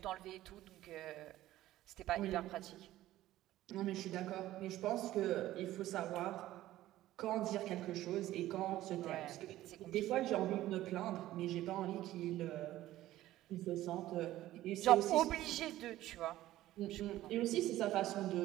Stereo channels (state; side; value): quieter; left; 14.8 dB